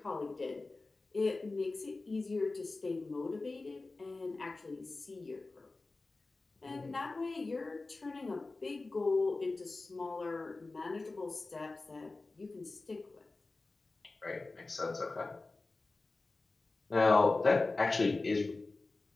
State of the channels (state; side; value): quieter; right; 3.4 dB